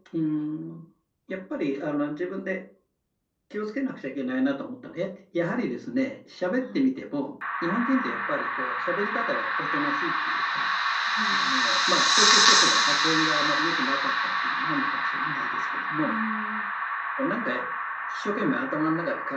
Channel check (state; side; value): identical; both; correlation 1.00